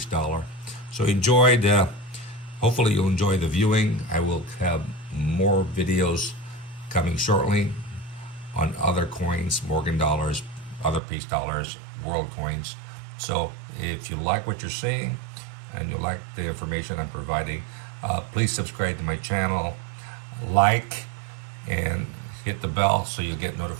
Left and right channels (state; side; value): drops out; left; at 11.0 s